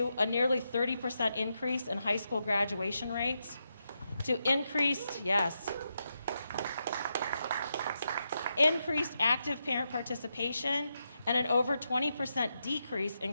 a nearly 30% increase in high school graduation rates, to increased active parent participation, and an over 20% decrease in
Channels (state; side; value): inverted; both; correlation -0.85